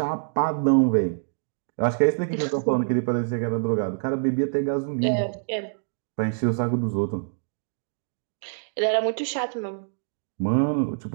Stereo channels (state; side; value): silent; left; digital silence